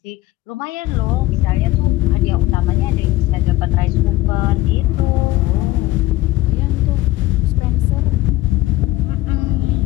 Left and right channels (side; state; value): right; quieter; 17.1 dB